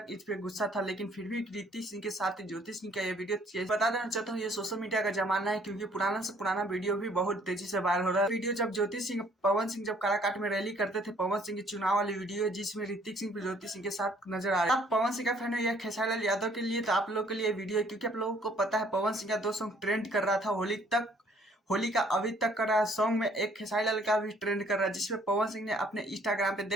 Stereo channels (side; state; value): both; normal; correlation 0.61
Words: इस पे गुस्सा था, लेकिन फिर भी ऋतिक सिंह के साथ ज्योति सिंह का ये वीडियो बता देना चाहता हूँ, ये सोशल मीडिया का जमाना है, क्योंकि पुराना से पुराना वीडियो भी बहुत तेजी से वायरल हो रहा है। वीडियो जब ज्योति सिंह पवन सिंह जब काराकाट में रैली करते थे, पवन सिंह की चुनाव वाली वीडियो है, जिसमें ऋतिक सिंह ज्योति सिंह के साथ नजर आ रहे हैं। आप पवन सिंह का फैन हो या खेसारी लाल यादव के लिए, तो आप लोग के लिए वीडियो है, क्योंकि आप लोगों को पता है पवन सिंह का 2 सॉन्ग ट्रेंड कर रहा था होली का अभी तक कर रहा है। सॉन्ग में एक खेसारी लाल का भी ट्रेंड कर रहा है, जिसमें पवन सिंह ने अपने इंस्टाग्राम पे